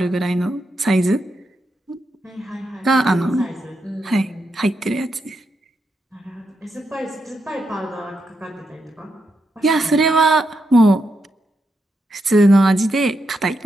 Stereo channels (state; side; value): normal; both; correlation 0.83